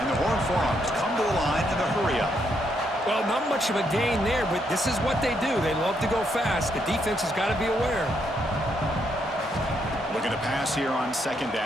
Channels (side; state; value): both; normal; correlation 0.76